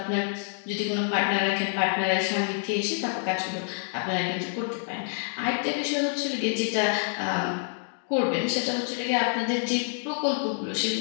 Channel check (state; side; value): silent; right; digital silence